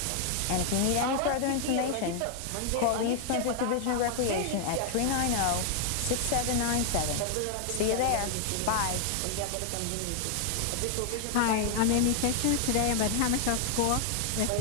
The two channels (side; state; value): both; different; correlation 0.00